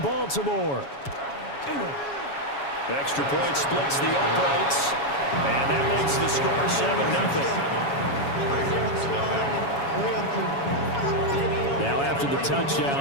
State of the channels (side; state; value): right; late; 7.2 ms